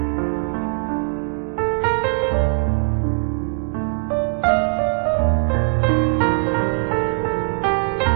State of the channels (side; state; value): left; silent; digital silence